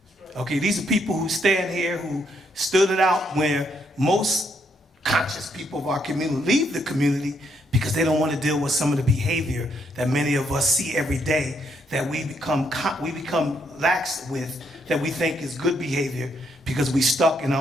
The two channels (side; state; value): both; normal; correlation 0.74